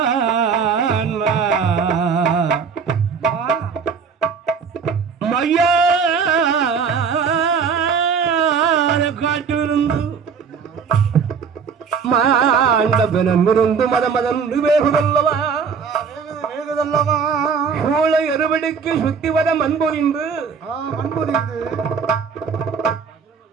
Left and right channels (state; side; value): quieter; left; 6.1 dB